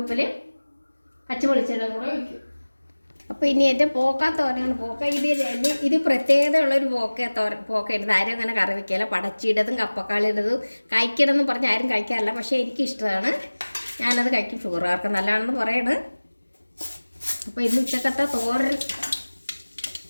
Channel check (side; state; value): both; inverted; correlation -1.00